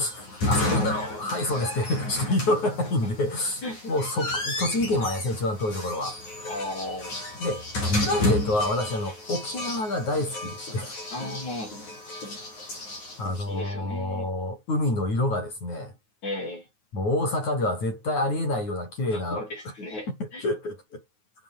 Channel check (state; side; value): late; right; 9.4 ms